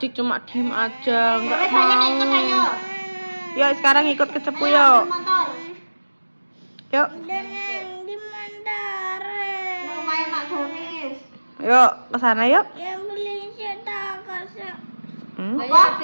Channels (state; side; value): inverted; both; correlation -1.00